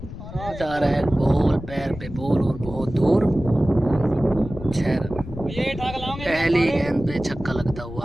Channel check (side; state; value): left; noise; rumble, 12 dB below the sound